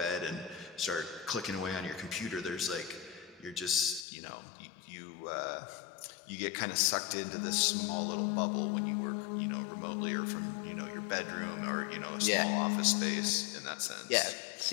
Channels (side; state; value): right; drops out; at 4.0 s